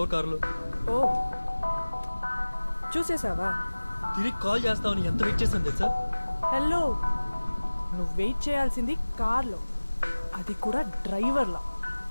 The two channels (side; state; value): both; inverted; correlation -1.00